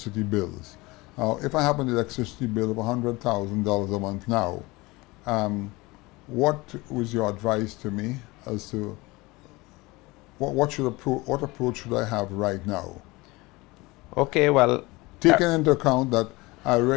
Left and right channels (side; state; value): right; quieter; 22.5 dB